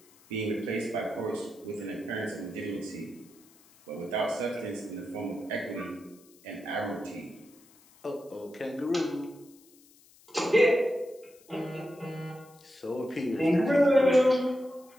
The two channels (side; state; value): left; noise; hiss, 27 dB below the sound